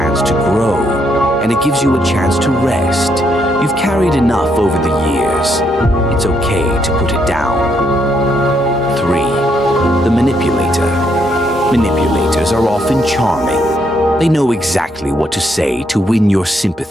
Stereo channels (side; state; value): both; normal; correlation 0.74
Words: to grow, and it gives you a chance to rest. You've carried enough over the years. It's okay to put it down. 3. The manipulator. Manipulators are often charming. They know exactly what to say to win your